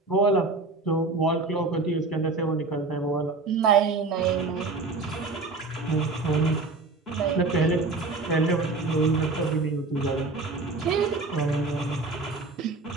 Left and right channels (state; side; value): quieter; left; 3.6 dB